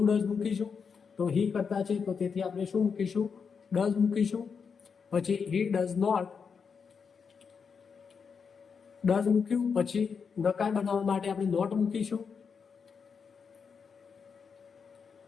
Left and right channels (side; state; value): right; quieter; 6.0 dB